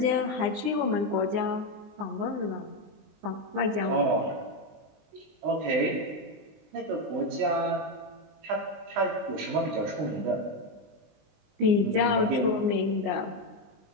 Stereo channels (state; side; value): late; left; 20 ms